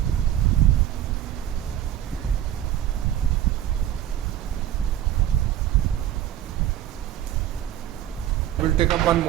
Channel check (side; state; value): left; quieter; 11.8 dB